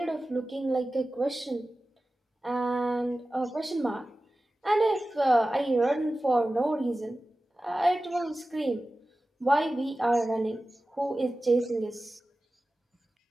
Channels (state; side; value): normal; both; correlation 0.95